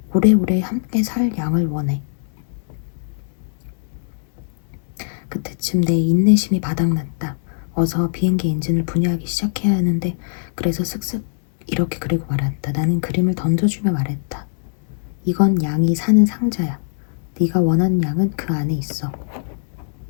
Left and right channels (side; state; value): right; silent; digital silence